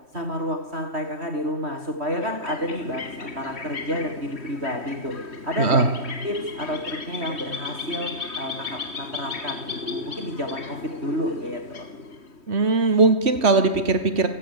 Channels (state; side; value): late; left; 3.1 ms